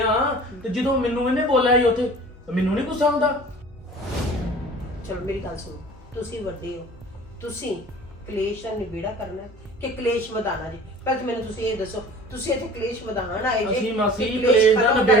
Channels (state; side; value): normal; both; correlation 0.44